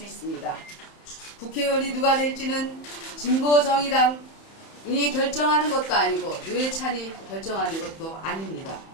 있습니다. 국회의원이 누가 될지는 진보 정의당이 결정하는 것도 아니고 노회찬이 결정하는 것도 아닙니다.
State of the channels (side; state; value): right; late; 31 ms